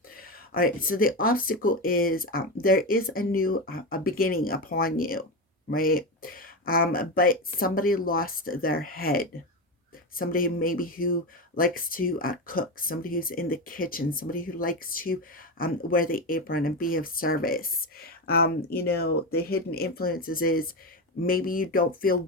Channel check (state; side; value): normal; both; correlation 0.16